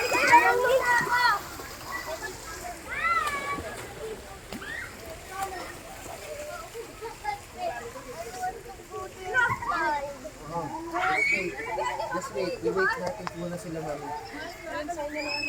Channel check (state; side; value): identical; both; correlation 1.00